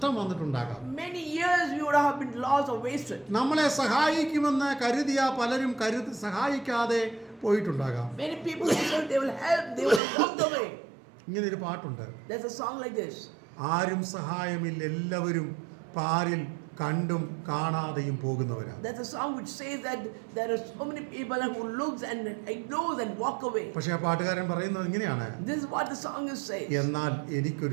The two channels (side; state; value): left; drops out; at 10.0 s